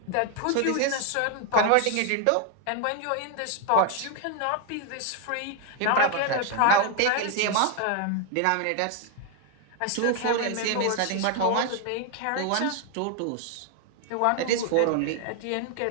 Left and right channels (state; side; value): different; both; correlation 0.00